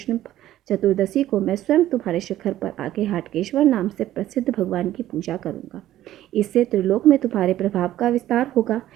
चतुर्दशी को मैं स्वयं तुम्हारे शिखर पर आके हाटकेश्वर नाम से प्रसिद्ध भगवान की पूजा करूंगा। इससे त्रिलोक में तुम्हारे प्रभाव का विस्तार होगा।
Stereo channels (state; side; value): quieter; left; 13.5 dB